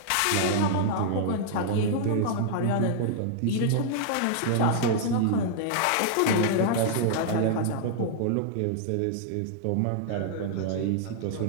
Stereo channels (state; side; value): different; both; correlation -0.01